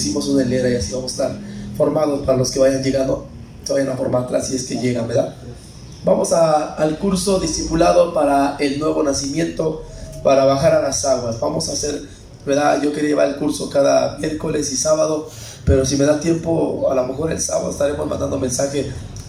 una hilera y así vamos a estar formados para los que vayan llegando, se vayan a formar atrás si es que llegan, ¿verdad? Vamos al curso discipulado para el nuevo nacimiento, para bajar a las aguas. Vamos a hacer ¿verdad? Yo quería llevar el curso cada miércoles y sábado, pero si me da tiempo, a lo mejor el sábado estaremos mandando mensaje,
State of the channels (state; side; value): identical; both; correlation 1.00